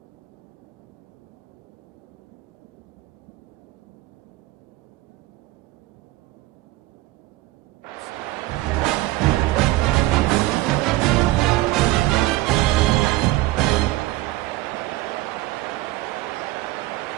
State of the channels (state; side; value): quieter; left; 18.2 dB